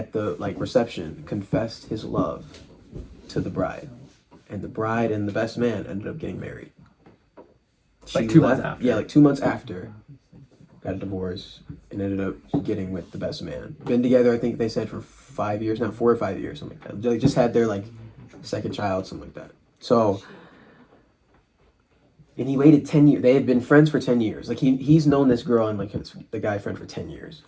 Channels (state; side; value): identical; both; correlation 1.00